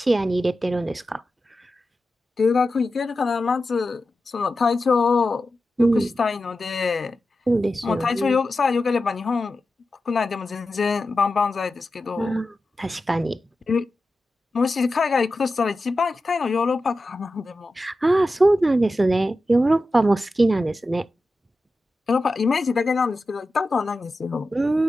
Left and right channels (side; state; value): both; normal; correlation 0.92